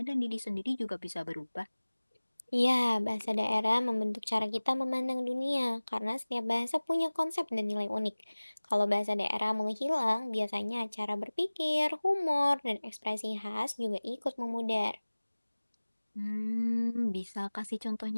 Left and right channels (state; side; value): inverted; both; correlation -1.00